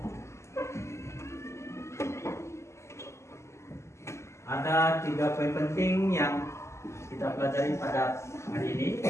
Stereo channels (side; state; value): right; late; 0.13 ms